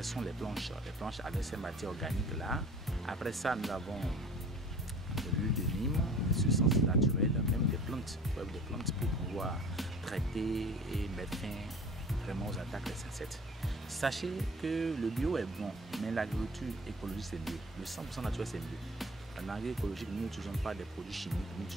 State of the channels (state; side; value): normal; both; correlation 0.45